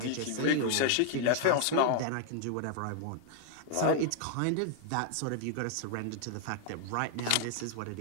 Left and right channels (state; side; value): different; both; correlation 0.00